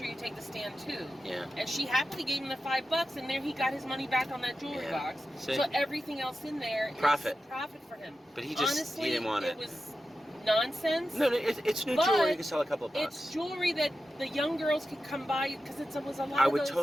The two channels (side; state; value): both; normal; correlation 0.92